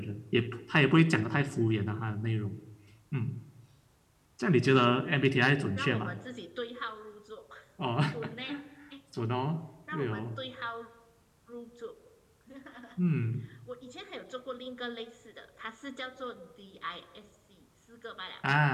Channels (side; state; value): both; identical; correlation 1.00